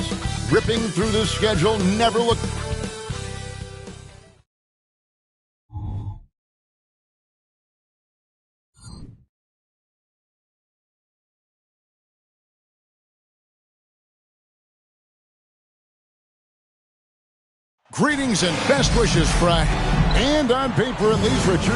Ripping through the schedule, never look. Greetings and best wishes, Fry. And on paper, at least,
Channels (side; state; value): both; identical; correlation 1.00